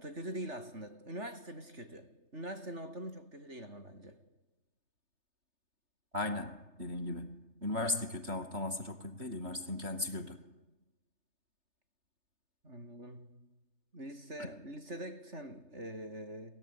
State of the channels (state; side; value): late; left; 3.3 ms